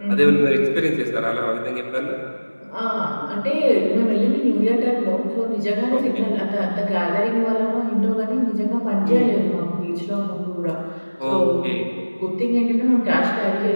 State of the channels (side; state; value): both; inverted; correlation -1.00